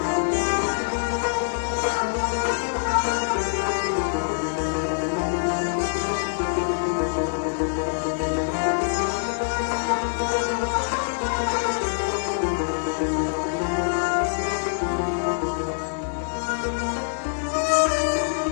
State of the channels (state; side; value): silent; right; digital silence